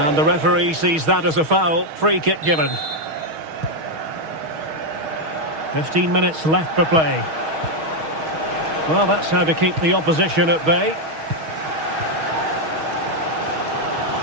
the referee sees that as a foul. Free kick given. 15 minutes left for play. Well, that's how to keep the opposition at bay.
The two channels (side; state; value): left; late; 6.3 ms